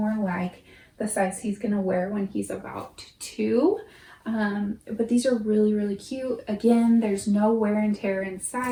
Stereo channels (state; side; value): identical; both; correlation 1.00